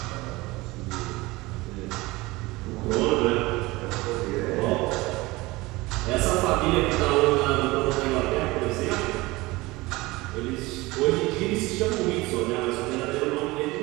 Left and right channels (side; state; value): left; quieter; 21.3 dB